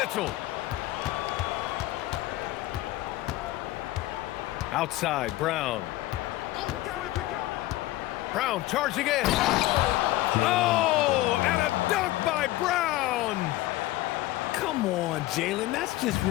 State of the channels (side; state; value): right; quieter; 16.9 dB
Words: Outside, Brown. Brown charging in. Oh, and a dunk by Brown. Come on, Jalen. That's just